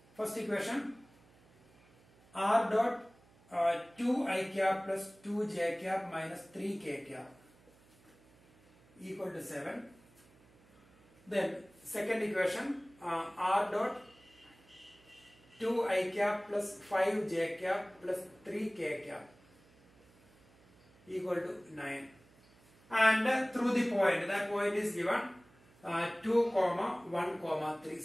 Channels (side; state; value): right; noise; hum, 28 dB below the sound